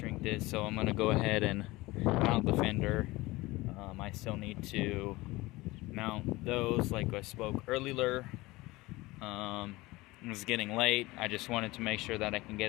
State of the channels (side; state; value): right; quieter; 20.6 dB